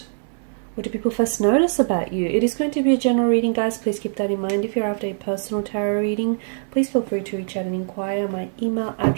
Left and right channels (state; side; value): silent; left; 64 dB below the other